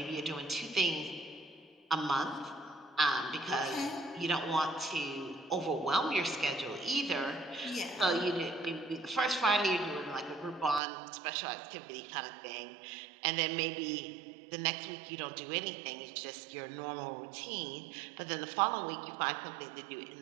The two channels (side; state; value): left; drops out; at 10.8 s